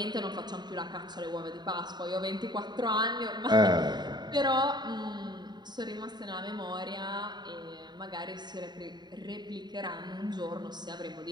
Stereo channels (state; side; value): late; left; 0.21 ms